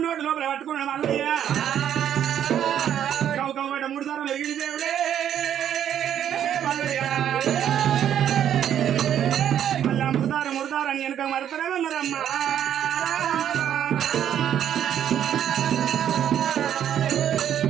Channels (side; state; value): left; quieter; 10.0 dB